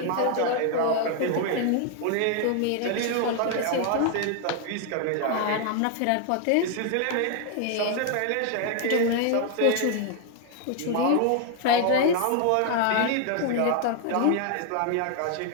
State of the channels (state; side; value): different; both; correlation 0.00